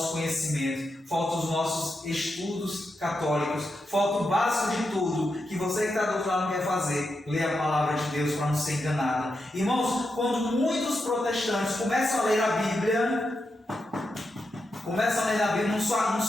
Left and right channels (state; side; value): normal; both; correlation 0.86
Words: conhecimento, falta os nossos estudos católicos, falta o básico de tudo, que você que está do outro lado quer fazer, ler a palavra de Deus para não ser enganado. Irmãos, quando muitos protestantes começam a ler a Bíblia, não